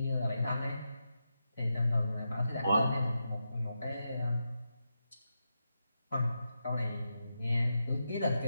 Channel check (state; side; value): inverted; both; correlation -0.87